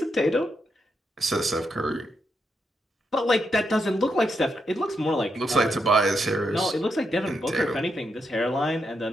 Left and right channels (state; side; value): normal; both; correlation 0.82